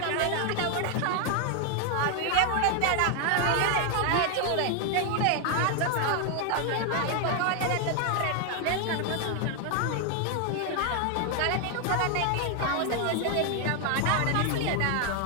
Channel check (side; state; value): both; different; correlation 0.01